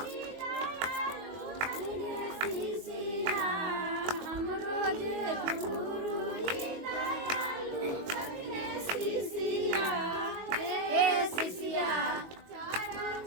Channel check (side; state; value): left; late; 22 ms